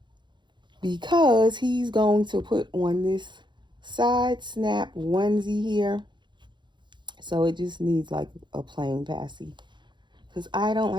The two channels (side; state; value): left; late; 0.22 ms